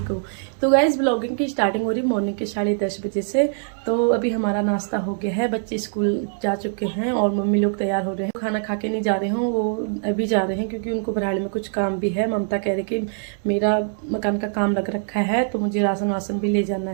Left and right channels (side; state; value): left; silent; digital silence